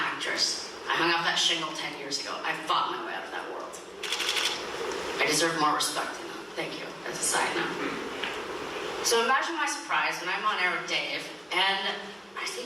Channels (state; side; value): identical; both; correlation 1.00